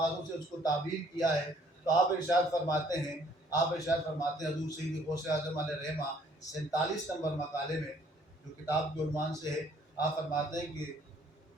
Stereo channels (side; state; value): both; normal; correlation 0.61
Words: سے اس کو تعبیر کیا ہے۔ تو آپ ارشاد فرماتے ہیں حضور سید غوث اعظم علیہ رحمہ 47 نمبر مقالے میں جو کتاب کے عنوان سے ہے، آپ فرماتے ہیں کہ